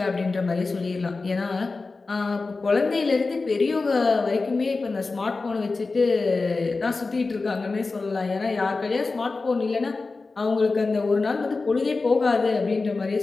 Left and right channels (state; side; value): quieter; right; 3.8 dB